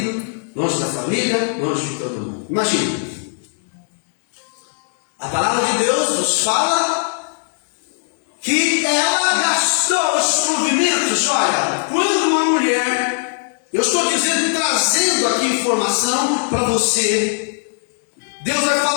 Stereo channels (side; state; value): right; silent; digital silence